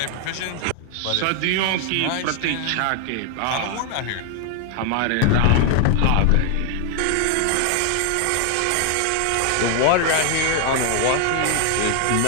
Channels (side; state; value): both; different; correlation 0.00